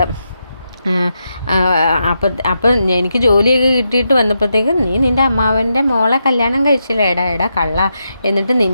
അപ്പം എനിക്ക് ജോലിയൊക്കെ കിട്ടിയിട്ട് വന്നപ്പോഴത്തേക്കും നീ നിൻ്റെ അമ്മാവൻ്റെ മോളെ കല്യാണം കഴിച്ചില്ലേ, എടാ കള്ള, എന്നിട്ട്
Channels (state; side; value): inverted; both; correlation -0.85